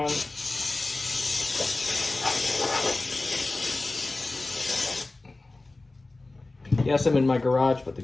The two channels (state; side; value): quieter; right; 3.1 dB